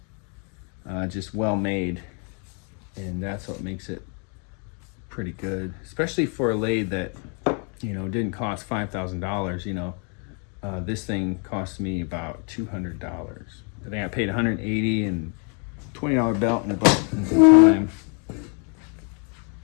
well made, and that's what makes it pretty good, especially for a lathe that, you know, didn't cost $5,000. You know, this thing cost me about $200. I think I paid $180 and $20 belt and some time.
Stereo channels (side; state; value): right; quieter; 38.3 dB